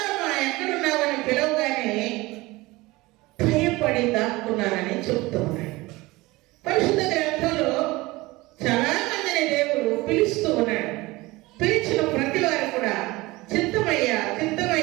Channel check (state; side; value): quieter; left; 21.0 dB